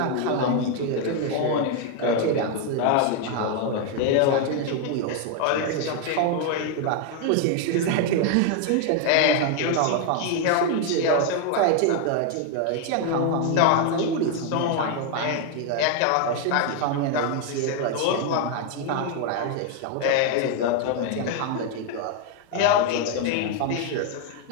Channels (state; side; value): different; both; correlation 0.01